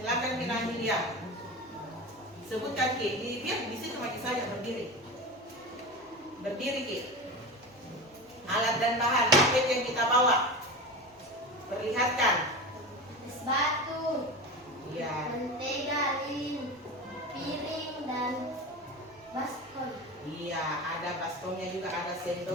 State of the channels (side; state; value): right; noise; hum, 30 dB below the sound